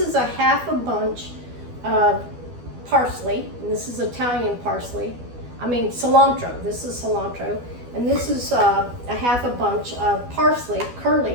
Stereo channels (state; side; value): late; left; 12 ms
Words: a half a bunch of parsley, and this is Italian parsley. Cilantro. This is cilantro. And this is a half a bunch of parsley,